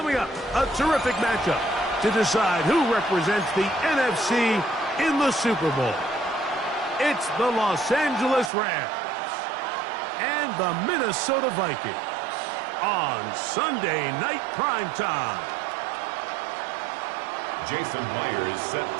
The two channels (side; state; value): left; drops out; at 8.5 s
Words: up, a terrific matchup to decide who represents the NFC in the Super Bowl. It's the Los Angeles Rams and the Minnesota Vikings on Sunday Night Primetime. Jason Myers set